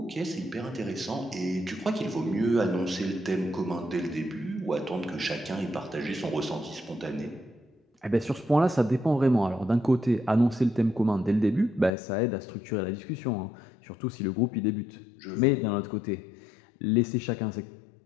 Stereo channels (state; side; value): drops out; right; at 11.9 s